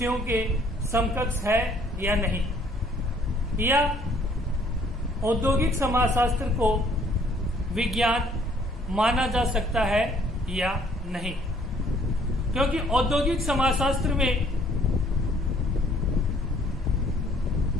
के समकक्ष है या नहीं, या औद्योगिक समाजशास्त्र को विज्ञान माना जा सकता है या नहीं। क्योंकि औद्योगिक समाजशास्त्र में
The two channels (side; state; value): both; normal; correlation 0.61